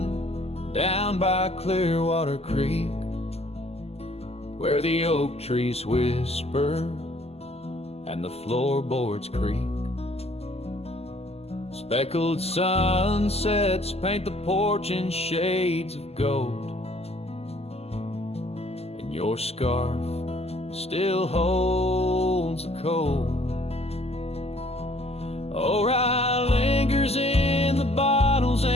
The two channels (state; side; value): late; right; 0.29 ms